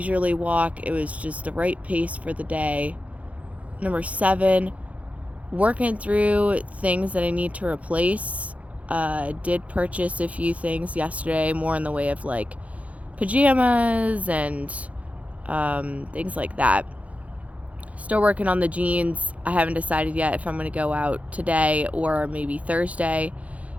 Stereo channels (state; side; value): late; left; 0.067 ms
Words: walk. It was just the right pace for the day. Number 7, working through things that I need to replace. Did purchase a few things yesterday, more in the way of like pajamas and things like that. Still working on the jeans. I haven't decided yet if I'm going to go out today or maybe Thursday